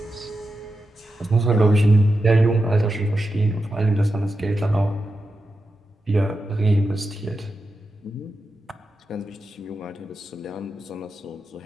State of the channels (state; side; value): normal; both; correlation 0.89